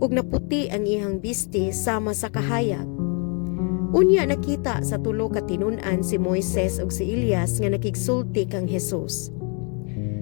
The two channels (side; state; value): right; quieter; 37.0 dB